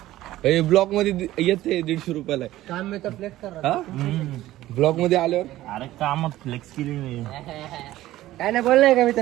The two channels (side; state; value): left; quieter; 15.3 dB